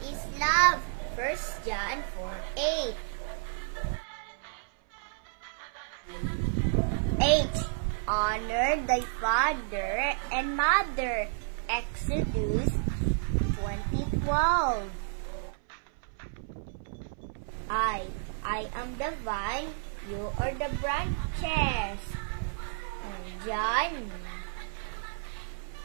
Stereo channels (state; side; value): silent; left; 57 dB below the other